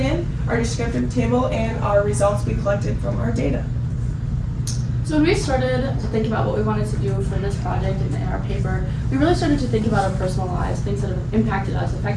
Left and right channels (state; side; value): identical; both; correlation 1.00